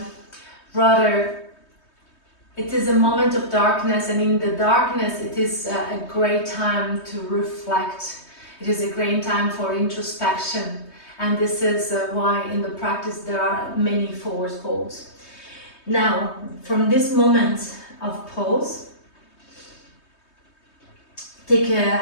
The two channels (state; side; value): late; right; 3.2 ms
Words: rather it is a moment of darkness, and in the darkness it is a great time to reflect. It is a great time for introspection, and this is why in the practice there are many forward folds. Now, from this moment of pose,